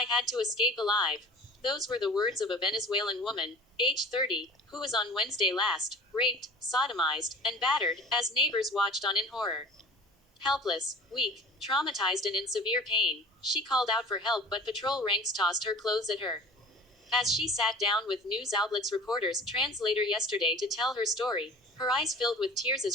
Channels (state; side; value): normal; both; correlation 0.42